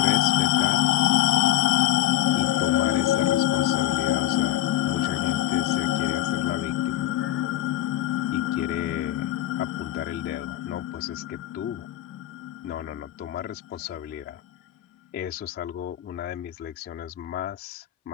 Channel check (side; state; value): right; quieter; 13.6 dB